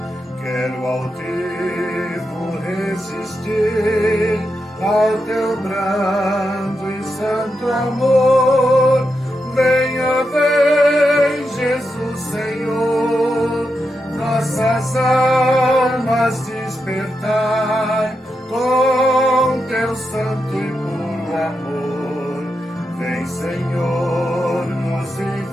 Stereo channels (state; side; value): normal; both; correlation 0.86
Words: altivo resistir ao teu brando e santo amor. Venha, vem, Jesus Senhor, nossas almas despertai com teu santo e puro amor. Vem, Senhor, nos